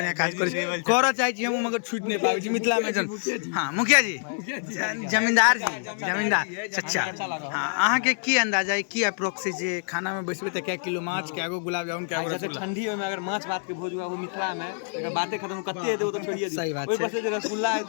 काज करै छी करऽ चाहै छी हम मगर छूट नहीं पाबै छी मिथिला में जन हाँ मुखिया जी जमींदार चचा हाँ अहाँ के की अंदाजा है की अप्रोक्स जे खाना में बैसबे त क्या किलो माछ क्या गो गुलाब जामुन क्या गो रसगुल्ला ठंडी में अगर माछ भात के भोज हुआ वो मिथिला में अगर बातें खत्म कते दे वो तो छोड़िए सही बात ओइ पर से जे रसगुल्ला है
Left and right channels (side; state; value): right; silent; digital silence